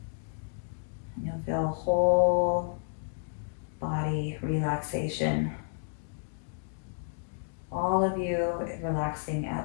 And you'll feel whole body relaxation. All of you relaxing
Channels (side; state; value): right; silent; digital silence